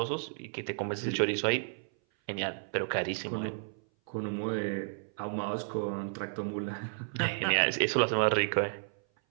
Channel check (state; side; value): silent; left; 56 dB below the other